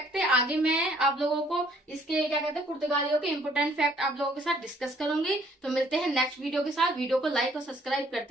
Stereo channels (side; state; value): both; normal; correlation 0.62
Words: थे। आगे मैं आप लोगों को इसके क्या कहते हैं, पुर्तगालियों के इंपोर्टेंट फैक्ट आप लोगों के साथ डिस्कस करूंगी। तो मिलते हैं नेक्स्ट वीडियो के साथ। वीडियो को लाइक और सब्सक्राइब